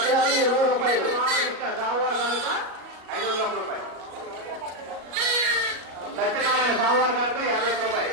20 రూపాయలు. సోమవారం కనుక 501 రూపాయలు. సత్యనారాయణ సోమవారం కనుక 50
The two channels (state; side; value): late; left; 37 ms